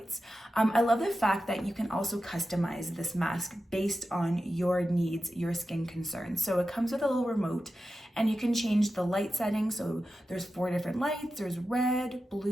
I love the fact that you can also customize this mask based on your needs, your skin concerns. So it comes with a little remote, and you can change the light settings. So there's 4 different lights. There's red,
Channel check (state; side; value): normal; both; correlation 0.92